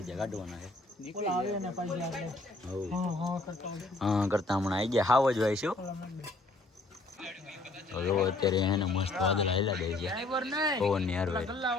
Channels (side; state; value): right; quieter; 3.0 dB